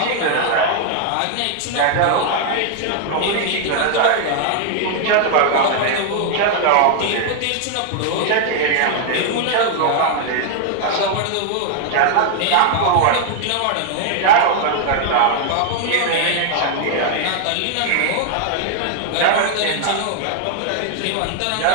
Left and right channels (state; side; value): different; both; correlation 0.00